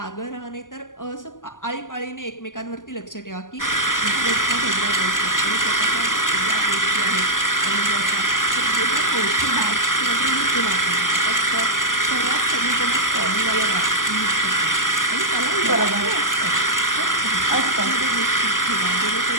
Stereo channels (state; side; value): late; right; 0.88 ms